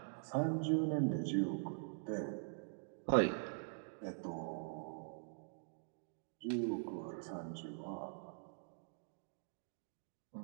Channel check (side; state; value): left; silent; digital silence